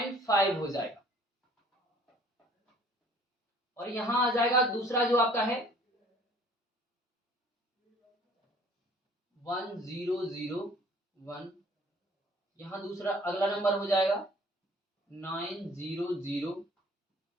हो जाएगा, और यहां आ जाएगा दूसरा जो आपका है 1001, यहां दूसरा अगला नंबर हो जाएगा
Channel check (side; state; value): both; normal; correlation 0.54